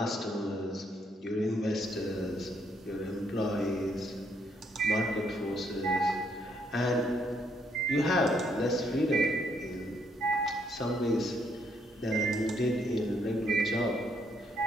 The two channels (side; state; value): both; normal; correlation 0.72